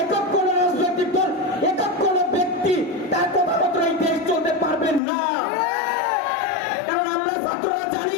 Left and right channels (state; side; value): drops out; right; at 5.0 s